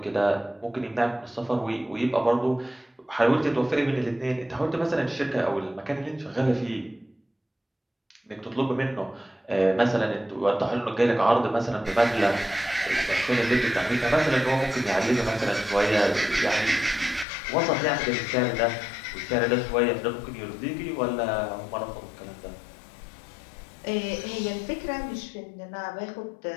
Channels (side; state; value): right; drops out; at 17.2 s